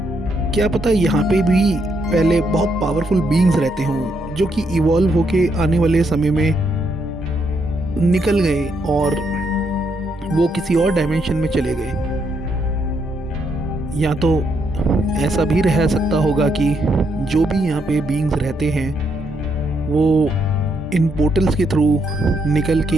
क्या पता यहाँ पे भी पहले बहुत पावरफुल बीइंग्स रहते हों जो कि इवॉल्व होके आने वाले समय में निकल गए और वो किसी और डायमेंशन में चले गए। या तो ऐसा भी रह सकता होगा कि जो भी यहाँ पे बीइंग्स रहते हैं वो इन पोर्टल्स के थ्रू निकल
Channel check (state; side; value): normal; both; correlation 0.77